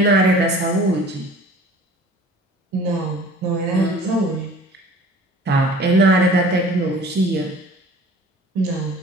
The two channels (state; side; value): normal; both; correlation 0.46